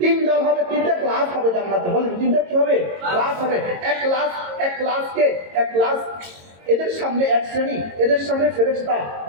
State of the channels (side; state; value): left; late; 22 ms